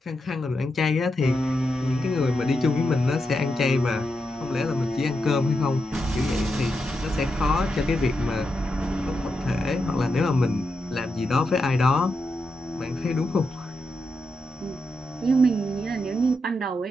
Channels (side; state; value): both; normal; correlation 0.85